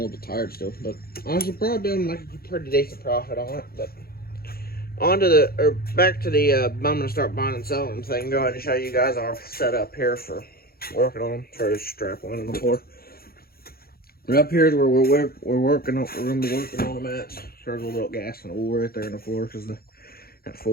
little bit tired still, but I should probably be able to make a pretty decent profit on it. But back to the I'm gonna start buying and selling thing. Go ahead and show you guys our setup here for working on them. Try to strap one on the floor. But up here is where we're working on. We're gonna be working on them at. There's a little gas and oil right there in the floor because that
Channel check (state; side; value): late; right; 0.44 ms